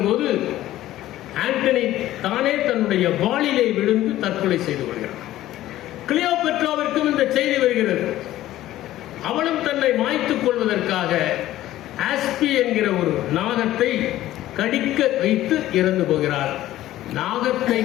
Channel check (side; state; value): right; quieter; 14.4 dB